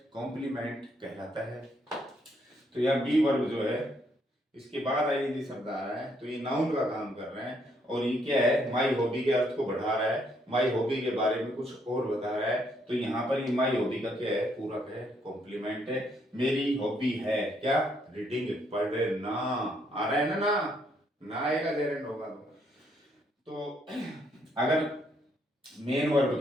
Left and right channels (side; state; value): both; normal; correlation 0.72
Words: कॉम्प्लीमेंट कहलाता है। तो यह बी वर्ब जो है इसके बाद आईएनजी शब्द आ रहा है, तो ये नाउन का काम कर रहे हैं, और ये क्या है? माई हॉबी के अर्थ को बढ़ा रहा है, माई हॉबी के बारे में कुछ और बता रहा है। तो यहाँ पर ये माई हॉबी का क्या है? पूरक है, कॉम्प्लीमेंट है। मेरी हॉबी है क्या? रीडिंग, पढ़ना। आ रहा है ना? ना आएगा जेरंड होगा तो अगर मेन वर्ब